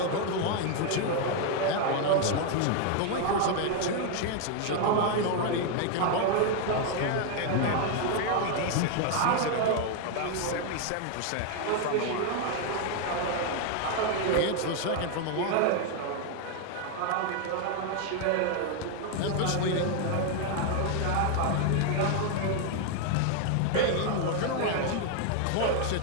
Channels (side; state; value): both; different; correlation 0.00